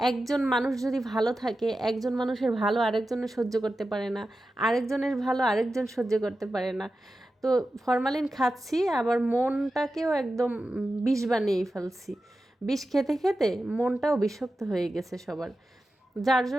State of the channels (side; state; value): both; normal; correlation 0.92